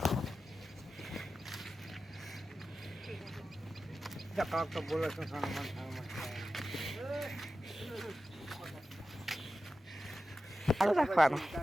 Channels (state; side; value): normal; both; correlation 0.93